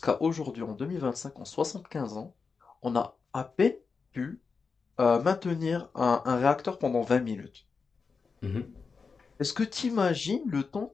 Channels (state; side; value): quieter; right; 5.0 dB